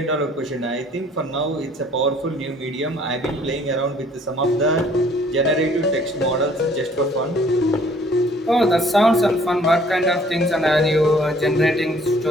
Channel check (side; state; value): both; normal; correlation 0.58